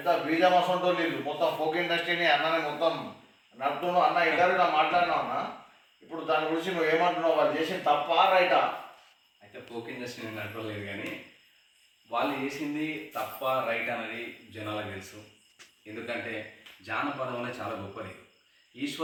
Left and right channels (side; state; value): both; identical; correlation 1.00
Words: బీజమసంటో వీళ్ళు మొత్తం ఫోక్ ఇండస్ట్రీని అన్నని మొత్తం నడుపుతున్నావు అన్న. ఇంటర్వ్యూలో మాట్లాడినావు అన్న. ఇప్పుడు దాని గురించి నువ్వు ఏమంటున్నావు? వాళ్ళు చేసిన తప్ప రైటా? అయితే ఫోక్ ఇండస్ట్రీ నడపలేదు, కానీ వాళ్ళు చేసింది తప్ప రైట్ అనేది జనాలకు తెలుసు. ఎందుకంటే జానపదం అనేది చాలా గొప్పది.